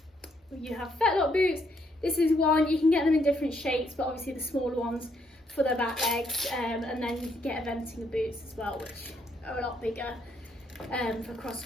You have Fetlock boots. This is one, you can get them in different shapes, but obviously the smaller ones for the back legs, and then you can get eventing boots as well, which are a lot bigger for cross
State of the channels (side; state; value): both; normal; correlation 0.73